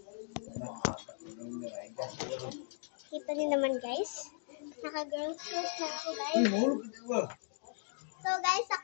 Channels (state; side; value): silent; right; digital silence